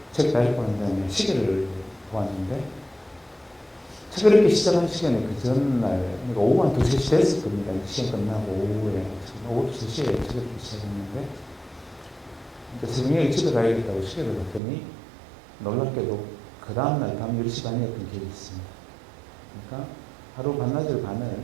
책 다 읽고 난 다음에 시계를 보았는데 책을 읽기 시작한 시간에 그 전날, 그러니까 오후 한 2, 3시 됐을 겁니다. 시간 끝나고 오후 2, 3시에 책을 읽기 시작했는데 새벽에 집에 가야겠다고 시계를 봤더니 놀랍게도 그 다음날 밤 10시 반이었던 기억이 있습니다. 그러니까 하루 반나절 반을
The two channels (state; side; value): drops out; left; at 14.6 s